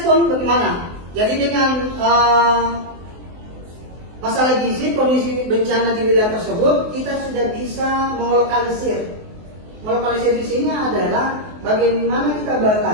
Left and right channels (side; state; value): left; late; 23 ms